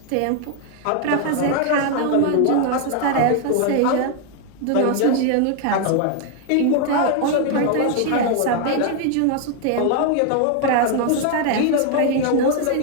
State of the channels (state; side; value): different; both; correlation 0.00